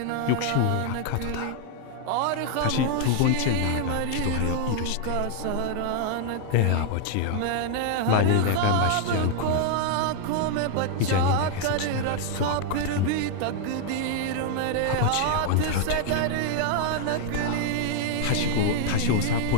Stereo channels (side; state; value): both; different; correlation 0.00